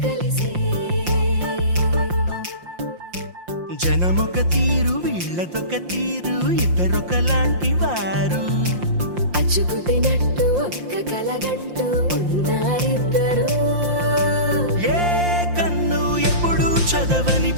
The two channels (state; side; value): late; left; 5.7 ms